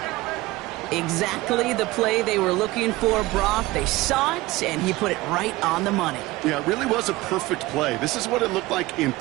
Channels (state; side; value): quieter; left; 19.4 dB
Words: Exactly the play they were looking for, Brock. They saw it, and he put it right on the money. Yeah, it really was a perfect play. This is what it looked like in